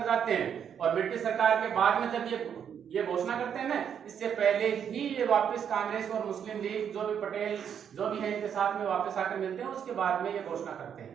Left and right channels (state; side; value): quieter; left; 8.2 dB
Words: जाते हैं और ब्रिटिश सरकार के बाद में जब ये घोषणा करते हैं ना, इससे पहले ही ये वापस कांग्रेस और मुस्लिम लीग जो भी पटेल जो भी है इनके साथ में वापस आकर मिलते हैं, उसके बाद में ये घोषणा करते